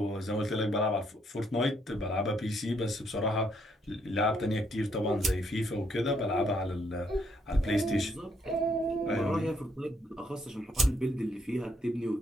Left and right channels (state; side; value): normal; both; correlation 0.72